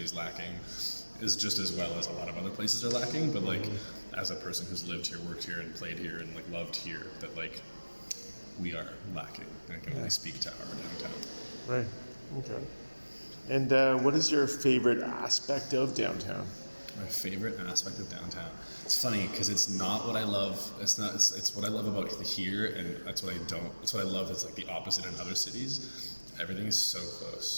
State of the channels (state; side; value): inverted; both; correlation -1.00